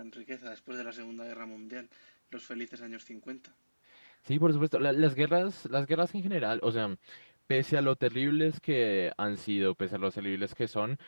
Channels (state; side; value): inverted; both; correlation -1.00